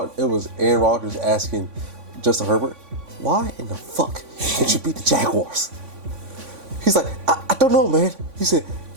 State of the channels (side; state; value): left; late; 3.5 ms